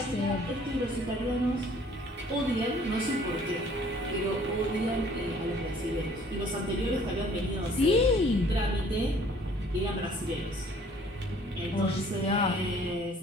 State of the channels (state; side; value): normal; both; correlation 0.56